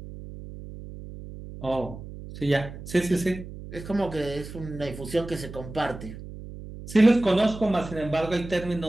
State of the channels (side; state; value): right; noise; hum, 12 dB below the sound